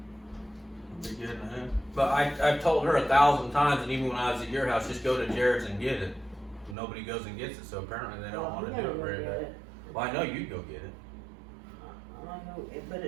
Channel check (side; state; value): left; drops out; at 6.8 s